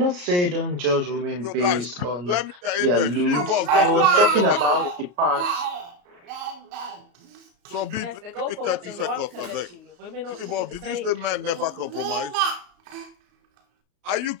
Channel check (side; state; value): left; late; 34 ms